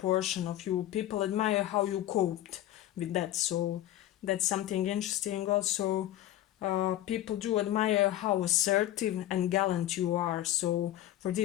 of you. People admire how you coped with that. So that's something interesting also. People do admire how assertive and gallant you are. So for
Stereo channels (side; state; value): right; quieter; 13.5 dB